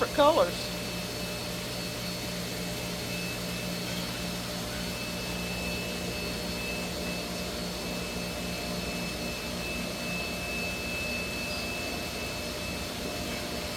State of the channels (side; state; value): both; identical; correlation 1.00